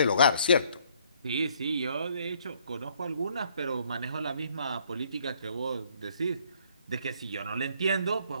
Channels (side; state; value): both; inverted; correlation -0.64